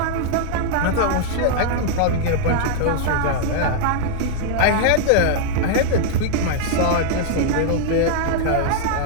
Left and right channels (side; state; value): both; different; correlation -0.01